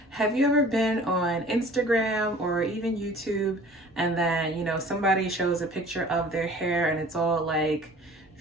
Have you ever been on Instagram or even YouTube and then, somebody shows a picture of their hair and it's all like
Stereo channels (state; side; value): normal; both; correlation 0.48